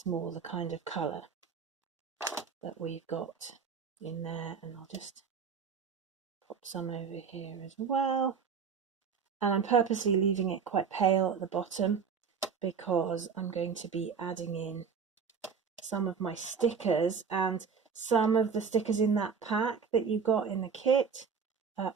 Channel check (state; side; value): quieter; left; 6.1 dB